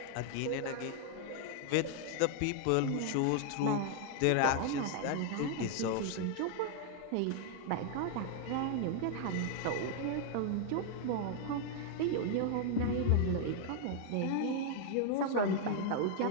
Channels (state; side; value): different; both; correlation 0.00